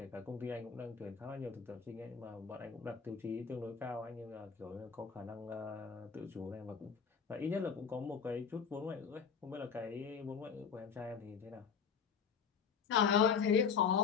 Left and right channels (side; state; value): right; quieter; 6.4 dB